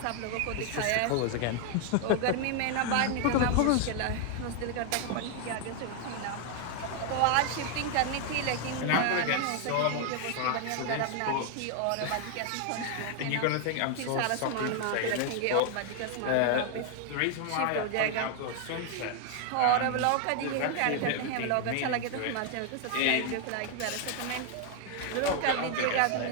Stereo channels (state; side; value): different; both; correlation 0.00